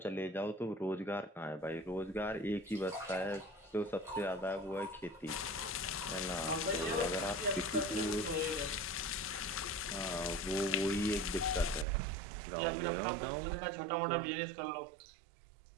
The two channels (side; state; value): left; drops out; at 11.9 s